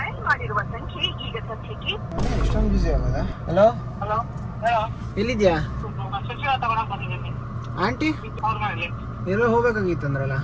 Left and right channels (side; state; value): both; identical; correlation 1.00